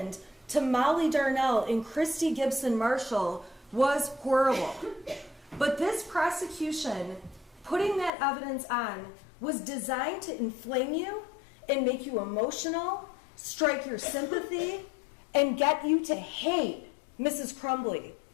to Molly Darnell and Christy Gibson Marshall was horrible. But this prosecution, putting that evidence on, was designed to inflame you and make you emotional, strike your sympathy, and get you to hate Mrs. Crumbley,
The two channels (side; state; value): right; drops out; at 8.1 s